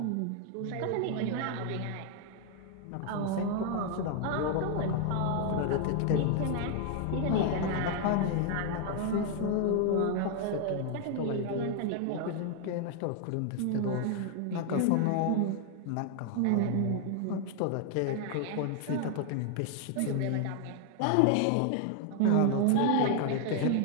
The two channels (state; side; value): different; both; correlation 0.00